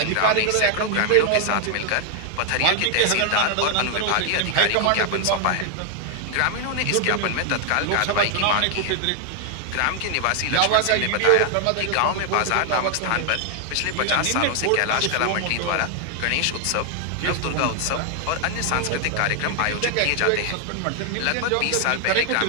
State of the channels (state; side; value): different; both; correlation 0.00